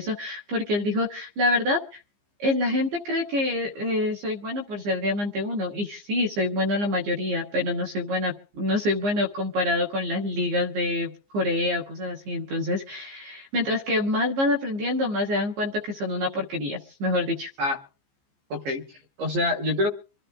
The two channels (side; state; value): left; late; 15 ms